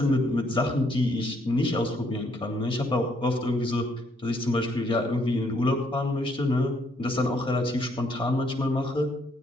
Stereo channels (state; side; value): normal; both; correlation 0.69